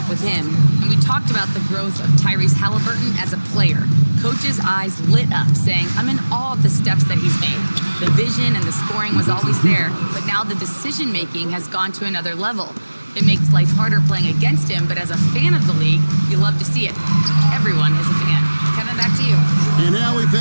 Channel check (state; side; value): inverted; both; correlation -1.00